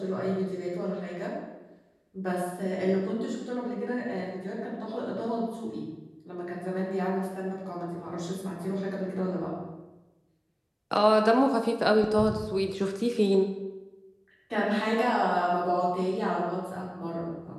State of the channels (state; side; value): identical; both; correlation 1.00